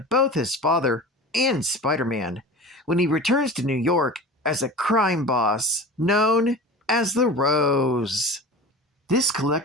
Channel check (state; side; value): normal; both; correlation 0.35